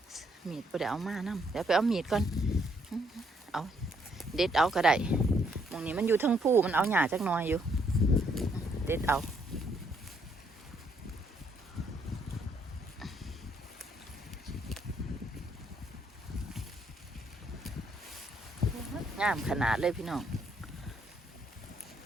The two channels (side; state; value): both; normal; correlation 0.71